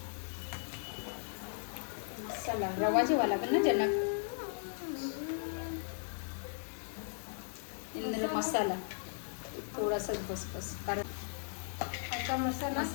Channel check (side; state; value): right; silent; digital silence